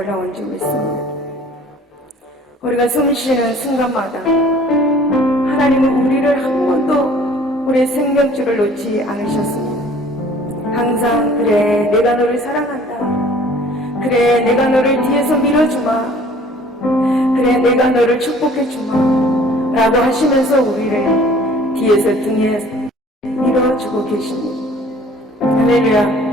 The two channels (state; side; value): normal; both; correlation 0.52